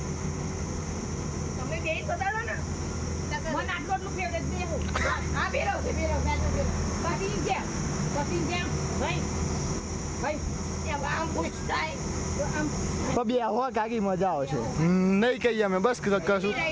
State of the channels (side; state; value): both; identical; correlation 1.00